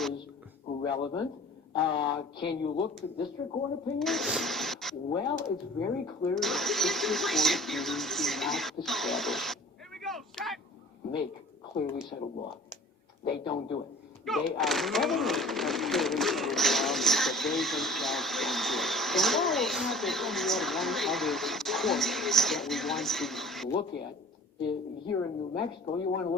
is relevant, can you look to district court opinions? Well, it's very clear that district court opinions do not establish, make clearly settled law. They don't do it. They are evidence of clearly settled law, but they themselves don't do it. And while it's not that only one other court that we want to look at, here in New Mexico, you want to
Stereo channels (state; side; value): normal; both; correlation 0.45